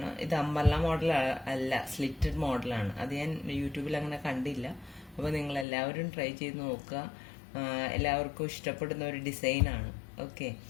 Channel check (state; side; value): drops out; right; at 5.7 s